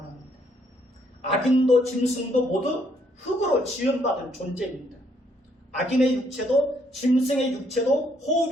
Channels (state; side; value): normal; both; correlation 0.70